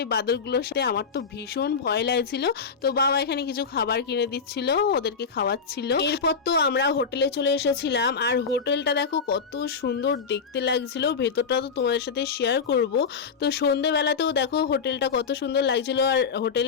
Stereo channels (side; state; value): right; quieter; 5.6 dB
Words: এই বাদরগুলোর সাথে। আমার তো ভীষণ ভয় লাগছিল। তো বাবা এখানে কিছু খাবার কিনে দিচ্ছিল, ওদেরকে খাওয়াচ্ছিল। এরপর তো আমরা হোটেলে চলে এসেছিলাম। আর হোটেলটা দেখো কত সুন্দর দেখতে লাগছিল, ভেতরটা তো তোমাদের সাথে শেয়ার করব। তো সন্ধেবেলাতেও দেখো হোটেলটা কত সুন্দর লাগছিল, আর